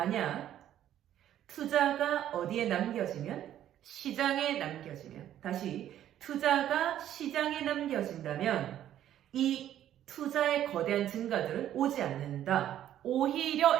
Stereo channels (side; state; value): left; quieter; 11.5 dB